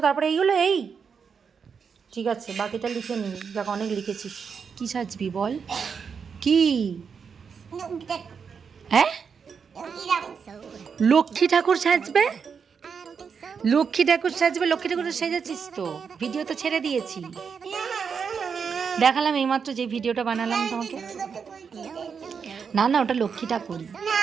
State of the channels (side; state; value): left; quieter; 6.2 dB